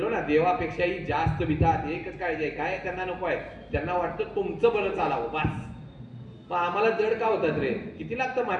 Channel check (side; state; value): both; identical; correlation 1.00